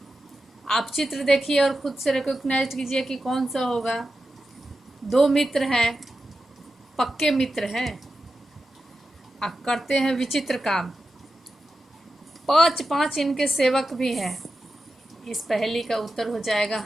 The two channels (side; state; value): both; normal; correlation 0.91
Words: आप चित्र देखिए और खुद से रिकॉग्नाइज कीजिए कि कौन सा होगा। 2 मित्र हैं, पक्के मित्र हैं, आप करते हैं विचित्र काम, 5-5 इनके सेवक भी हैं। इस पहेली का उत्तर हो जाएगा